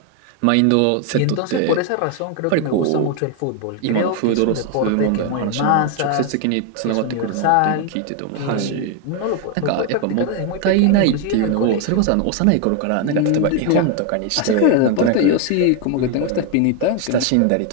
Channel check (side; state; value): both; different; correlation 0.01